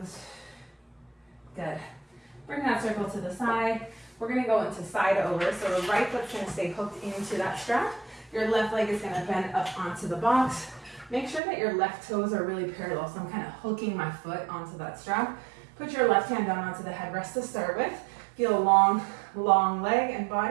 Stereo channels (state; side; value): drops out; left; at 11.4 s